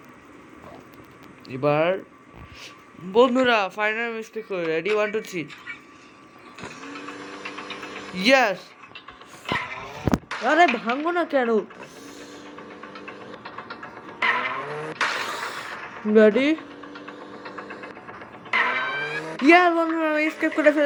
এবার বন্ধুরা ফাইনাল মিস্টেক করে রেডি 1 2 3 ইয়াস। আরে ভাঙবো না কেন? রেডি ইয়াস বন্ধুরা, আমি স্কেপ করে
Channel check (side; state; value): both; identical; correlation 1.00